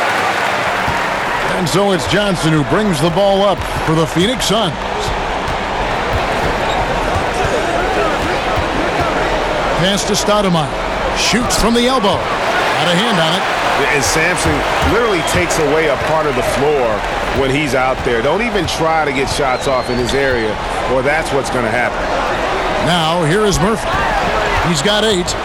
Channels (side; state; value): both; identical; correlation 1.00